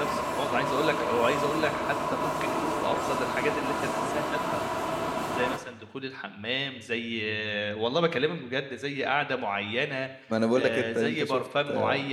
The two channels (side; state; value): both; identical; correlation 1.00